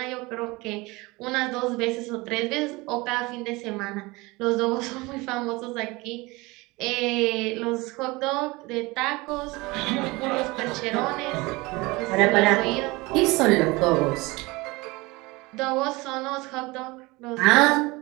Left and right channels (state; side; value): quieter; left; 23.1 dB